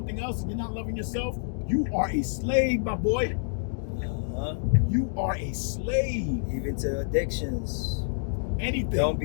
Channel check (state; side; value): silent; right; digital silence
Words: else and you're not loving yourself, you are a slave, my boy. You are a slave. Even to addictions. Anything. Don't